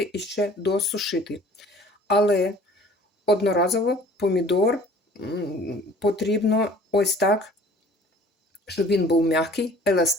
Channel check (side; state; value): both; normal; correlation 0.50